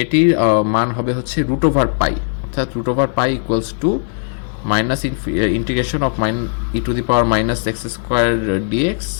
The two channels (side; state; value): right; silent; digital silence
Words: মান হবে হচ্ছে রুট ওভার পাই, অর্থাৎ root over pi equals to minus integration of e to the power minus x square dx